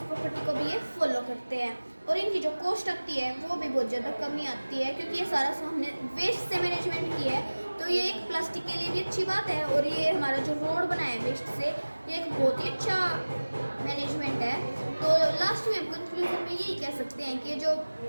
प्रॉपर्टी को भी ये फॉलो करते हैं। और इनकी जो कॉस्ट आती है वो भी बहुत ज़्यादा कमी आती है, क्योंकि ये सारा हमने वेस्ट से मैनेजमेंट किया है। तो ये एक प्लास्टिक के लिए भी अच्छी बात है और ये हमारा जो रोड बना है वेस्ट से, ये एक बहुत ही अच्छा मैनेजमेंट है। तो लास्ट में हम कंक्लूजन में यही कह सकते हैं कि जो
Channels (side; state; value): both; inverted; correlation -1.00